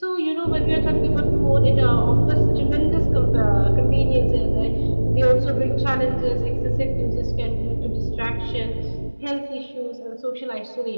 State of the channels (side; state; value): both; inverted; correlation -1.00